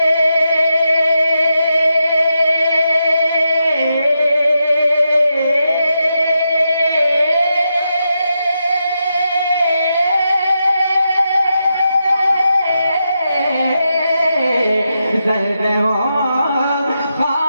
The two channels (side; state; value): both; inverted; correlation -0.85